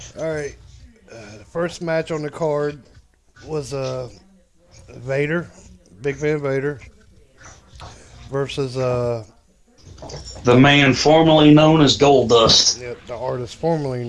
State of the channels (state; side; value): identical; both; correlation 1.00